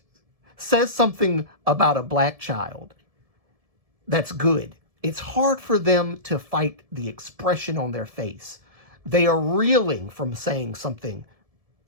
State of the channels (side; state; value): left; late; 1.7 ms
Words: says something about a black child that's good, it's hard for them to fight the expression on their face. They are reeling from saying something